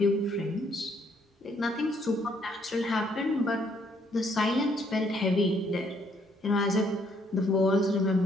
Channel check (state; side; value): normal; both; correlation 0.68